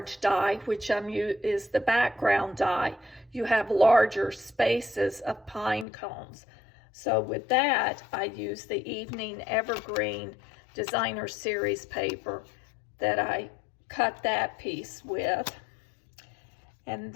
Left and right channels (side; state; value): right; drops out; at 5.9 s